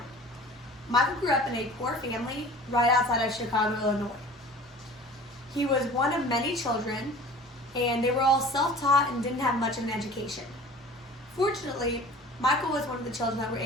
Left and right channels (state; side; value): normal; both; correlation 0.43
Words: Michael grew up in a poor family right outside of Chicago, Illinois. He was one of many children, and they were all self-taught and didn't have much of an education. Fortunately, Michael was one of the children that were